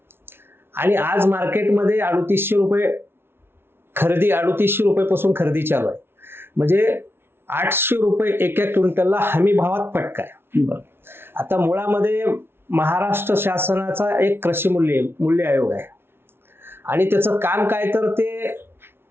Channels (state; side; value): late; left; 0.11 ms